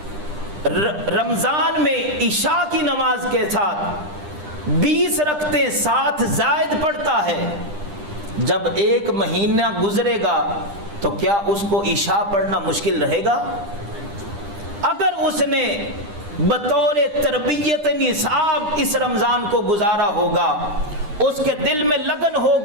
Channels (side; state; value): left; late; 10 ms